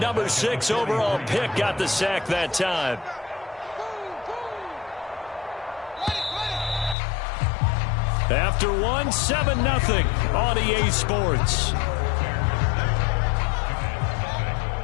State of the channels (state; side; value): drops out; right; at 7.0 s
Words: 6 overall pick, got the sack that time. After one, 7-0 on EA Sports.